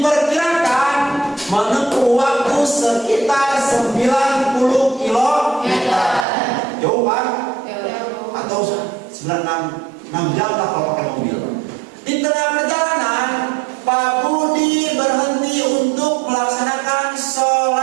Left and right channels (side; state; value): left; drops out; at 6.2 s